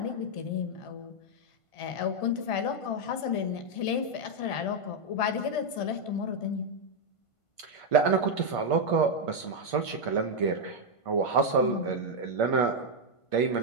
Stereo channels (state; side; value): late; right; 1.5 ms